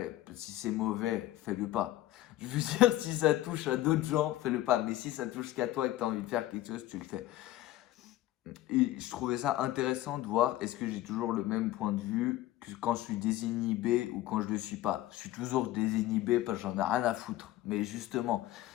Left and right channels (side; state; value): right; quieter; 15.2 dB